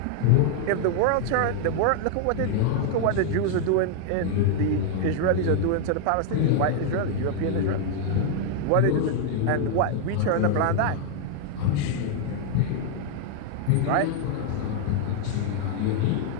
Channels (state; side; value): different; both; correlation 0.00